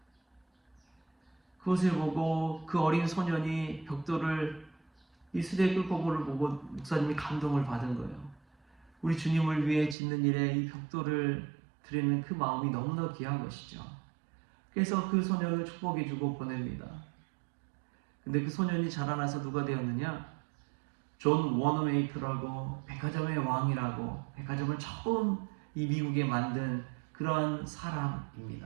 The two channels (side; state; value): left; drops out; at 10.0 s